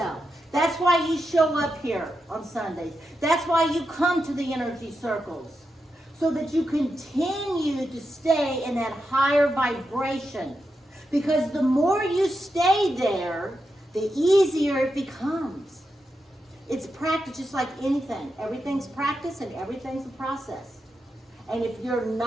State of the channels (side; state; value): both; normal; correlation 0.87